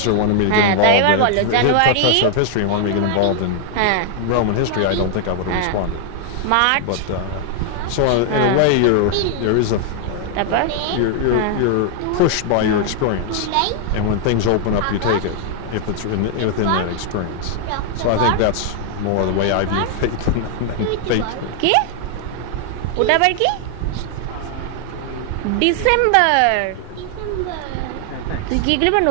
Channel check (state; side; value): different; both; correlation 0.00